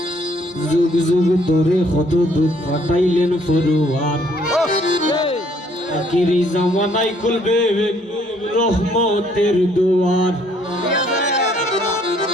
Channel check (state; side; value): normal; both; correlation 0.65